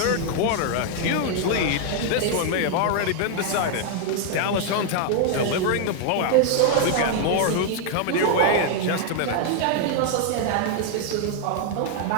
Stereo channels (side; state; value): both; different; correlation 0.00